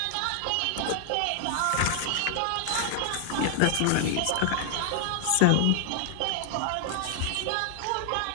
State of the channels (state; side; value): different; both; correlation 0.00